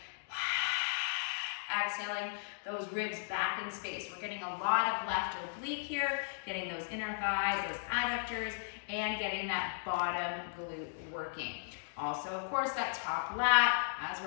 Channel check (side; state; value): right; silent; digital silence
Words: exhaling those ribs back in space. We're getting a lot of left oblique here, getting those inner thighs, those adductors, and getting that bottom glute working. Also, of course, that top lat as